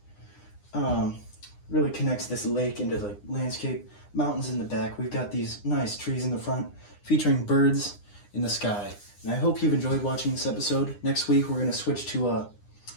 Really connects this lake into the landscape. Mountains in the back. We've got these nice trees in the front featuring birds in the sky. And I hope you've enjoyed watching this episode. Next week we're going to switch to a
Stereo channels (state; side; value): late; right; 9.8 ms